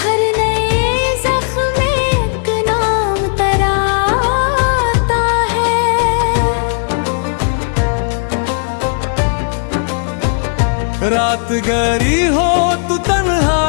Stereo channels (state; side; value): silent; right; 58 dB below the other